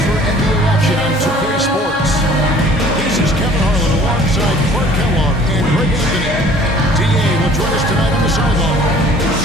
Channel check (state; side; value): normal; both; correlation 0.52